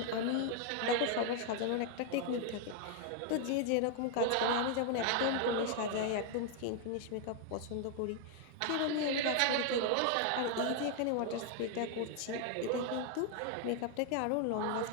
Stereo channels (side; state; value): both; different; correlation 0.00